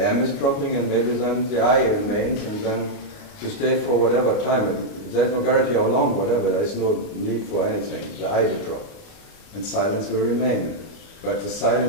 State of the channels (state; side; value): late; right; 29 ms